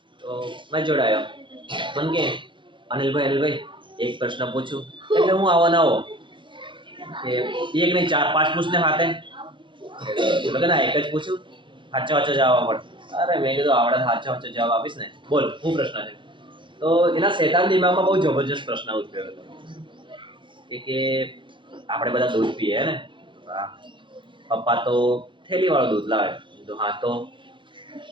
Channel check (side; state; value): left; late; 0.23 ms